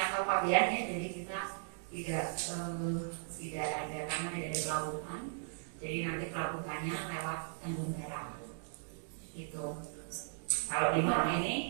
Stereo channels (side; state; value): left; silent; digital silence